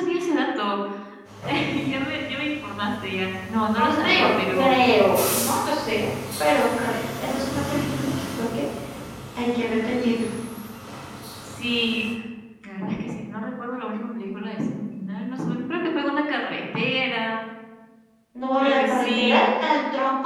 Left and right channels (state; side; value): identical; both; correlation 1.00